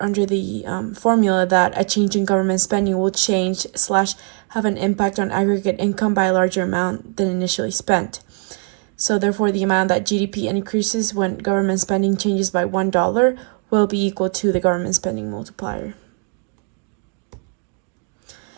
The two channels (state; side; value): quieter; left; 39.2 dB